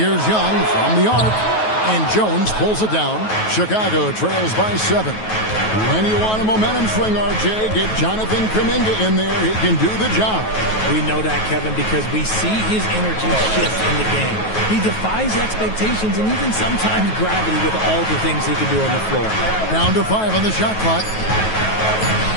Young from the arc. And Jones pulls it down. Chicago trails by 7. When you want a momentum swing, RJ, get Jonathan Kuminga in there. He can do the job. We know that, Kevin, because we see his energy shift in the game. He defies expectations and even sometimes gravity with all the things he can do on the floor. Down to 5 on the shot clock.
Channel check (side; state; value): right; late; 9.3 ms